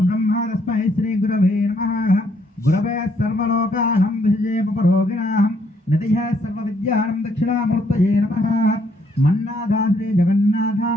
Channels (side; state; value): both; normal; correlation 0.70